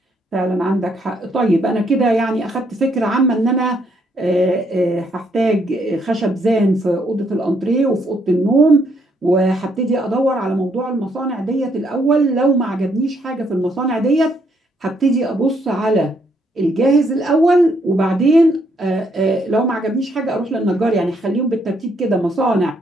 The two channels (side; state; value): both; normal; correlation 0.72